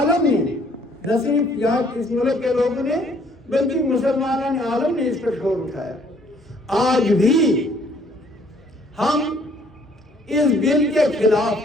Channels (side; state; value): both; normal; correlation 0.62